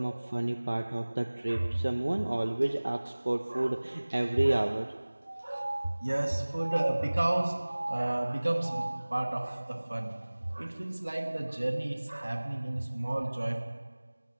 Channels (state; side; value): inverted; both; correlation -1.00